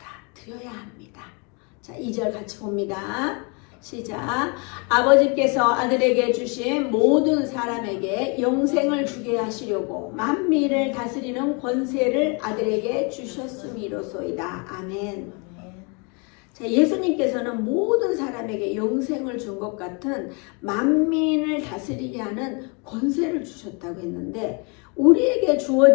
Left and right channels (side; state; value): right; quieter; 33.2 dB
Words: 합니다. 자, 2절 같이 봅니다. 시작. 아버지께서 아들에게 주신 모든 사람에게 영생을 주게 하시려고 만민을 다스리는 권세를 아들에게 주셨음이로소이다. 아멘. 자, 예수님께서는 모든 사람에게 영생을 준 것 같은 만민을 다스리게 하는 권세를 주셨다고 했는데 우리에게